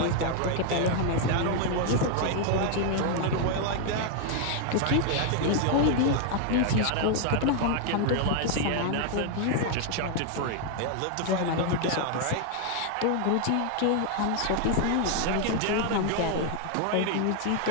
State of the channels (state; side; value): different; both; correlation 0.00